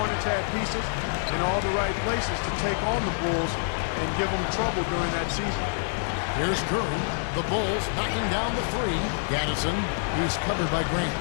had pieces in all the right places to take on the Bulls and give them trouble during that season. Here's Curry. The Bulls knocking down the 3. Gaddison, he's covered by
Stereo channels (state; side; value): silent; right; 60 dB below the other